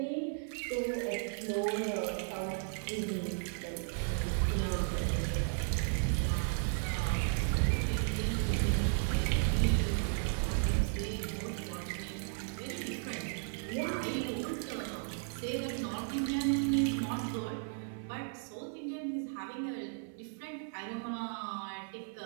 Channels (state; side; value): silent; left; 54 dB below the other